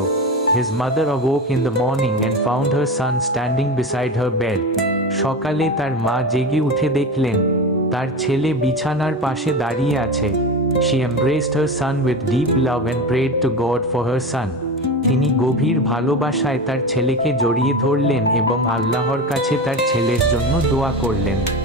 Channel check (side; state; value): both; normal; correlation 0.24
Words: His mother awoke in the morning and found her son standing beside her bed. সকালে তার মা জেগে উঠে দেখলেন তার ছেলে বিছানার পাশে দাঁড়িয়ে আছে। She embraced her son with deep love and prayed to God for her son. তিনি গভীর ভালোবাসায় তার ছেলেকে জড়িয়ে ধরলেন এবং আল্লাহর কাছে তার ছেলের জন্য দোয়া করলেন।